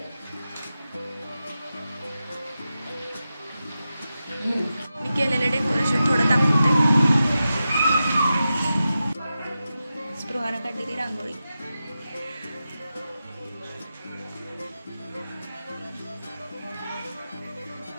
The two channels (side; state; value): both; inverted; correlation -0.91